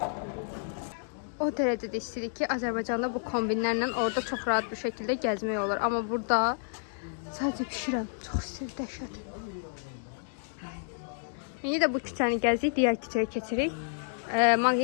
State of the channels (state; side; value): silent; right; digital silence